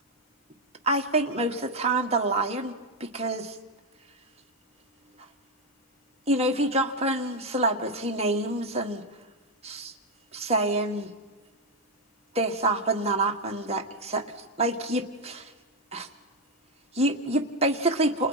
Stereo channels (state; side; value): normal; both; correlation 0.05